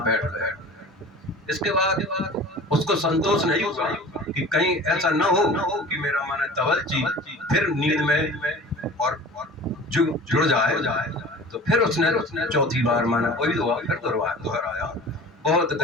बैठ गए। इसके बाद उसको संतोष नहीं हुआ कि कहीं ऐसा ना हो कि मेरा माने तवलजी फिर नींद में और जुड़ जाए। तो फिर उसने चौथी बार माना वही दुआ फिर दोहराया, बहुत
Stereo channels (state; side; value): normal; both; correlation 0.40